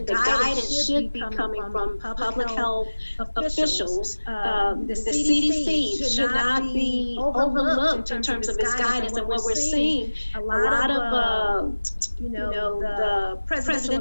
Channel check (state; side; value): inverted; both; correlation -1.00